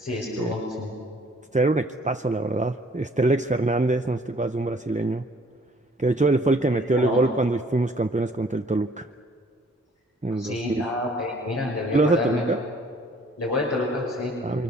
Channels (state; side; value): normal; both; correlation 0.58